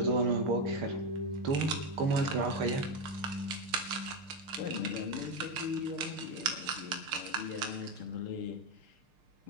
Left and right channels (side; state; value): left; late; 6.6 ms